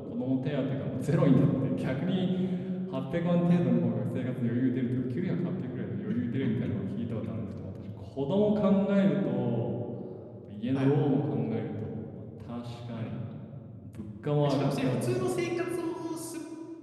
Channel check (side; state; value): both; identical; correlation 1.00